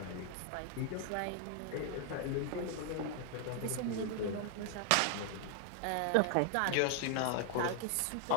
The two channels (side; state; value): both; different; correlation 0.00